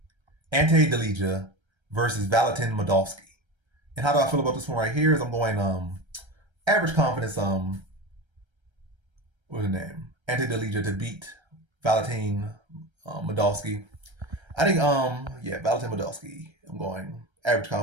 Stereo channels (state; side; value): late; left; 1.3 ms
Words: Ante Delija versus Valentin Moldavsky. And how do I feel about this one right here is I'm going average confidence what's the name? Ante Delija to beat Valentin Moldavsky. I think Valentin Moldavsky. I'm going average